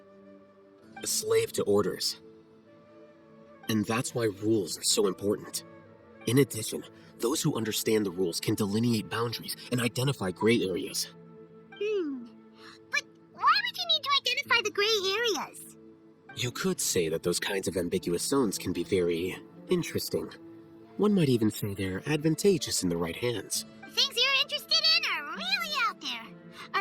A slave to orders. And that's why rules are so important. In addition, those who understand the rules can delineate boundaries and identify gray areas. But why would you need to identify the gray areas? You could say that those kinds of ambiguous zones can be very interesting. One might even say they're advantageous in the right hands. Things you're interested in are really out there.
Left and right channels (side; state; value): both; identical; correlation 1.00